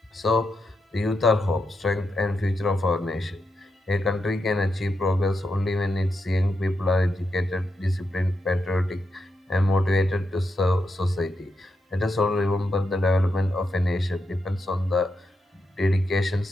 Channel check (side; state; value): both; normal; correlation 0.85